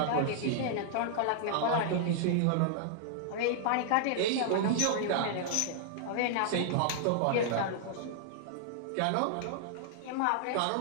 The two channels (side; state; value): both; different; correlation -0.01